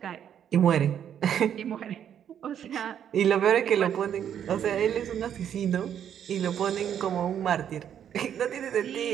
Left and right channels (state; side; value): quieter; left; 9.2 dB